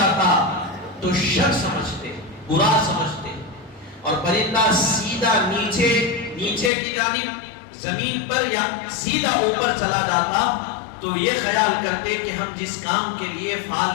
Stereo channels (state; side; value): drops out; right; at 6.7 s